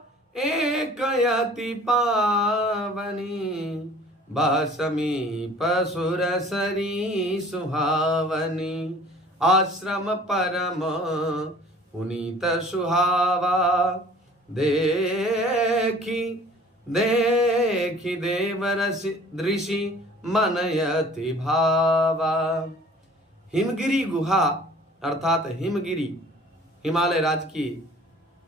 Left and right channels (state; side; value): normal; both; correlation 0.49